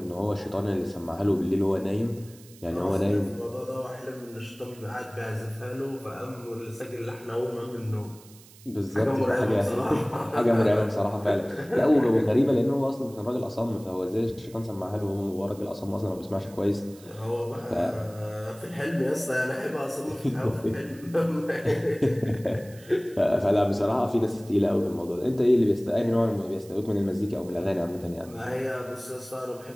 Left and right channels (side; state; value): right; noise; hiss, 23 dB below the sound